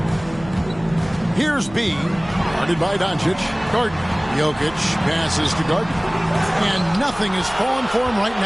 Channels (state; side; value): noise; right; hum, 18 dB below the sound